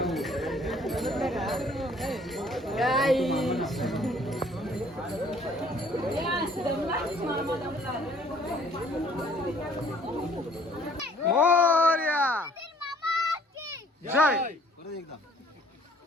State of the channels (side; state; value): both; normal; correlation 0.58